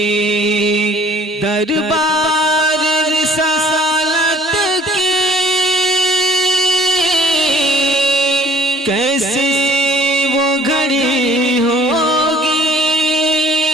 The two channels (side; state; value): both; normal; correlation 0.54